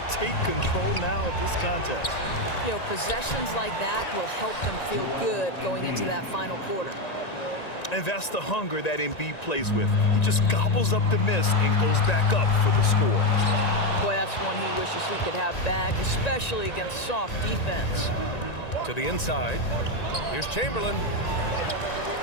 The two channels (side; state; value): right; late; 1.9 ms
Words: take control now of this contest. You know, possessions like that will help them feel good going into that final quarter. And that's the hunger that Embiid plays with. He just gobbles up the miss and goes back up for the score. Boy, that's one he wishes he could have back, especially against soft defense. To the inside. Here's Chamberlain.